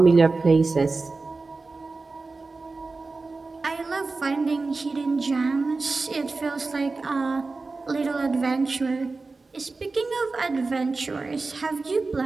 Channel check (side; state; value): left; quieter; 3.8 dB